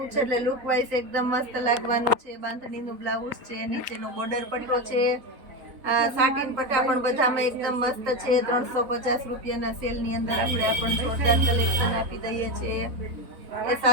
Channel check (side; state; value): left; late; 3.7 ms